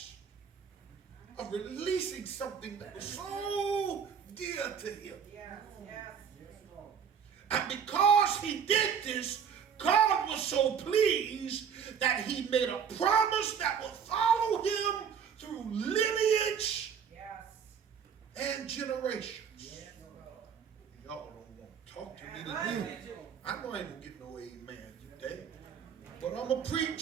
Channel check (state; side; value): quieter; left; 7.4 dB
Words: of releasing something that was so dear to him. And because he did this, God was so pleased that he made a promise that would follow him through lineage and generations. Y'all don't want to talk to me today. I know I ain't going to get no amen today. But I'm going to